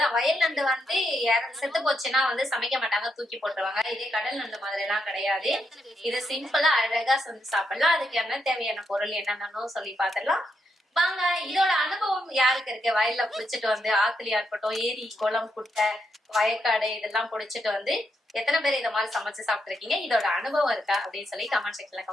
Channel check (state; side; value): normal; both; correlation 0.81